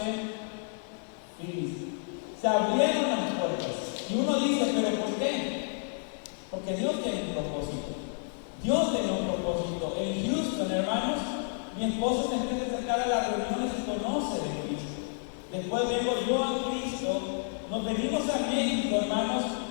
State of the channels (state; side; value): silent; right; 58 dB below the other